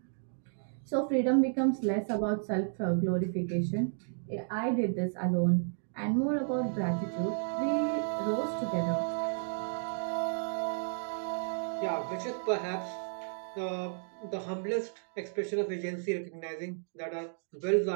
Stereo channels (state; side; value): silent; left; digital silence